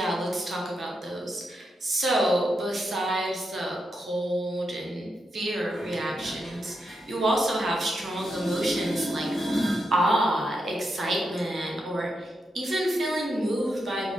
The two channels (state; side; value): normal; both; correlation 0.85